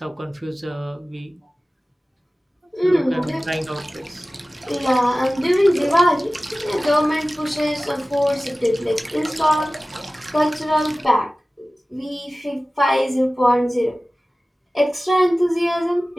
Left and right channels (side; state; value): both; normal; correlation 0.97